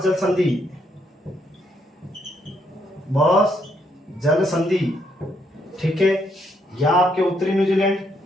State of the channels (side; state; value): both; normal; correlation 0.74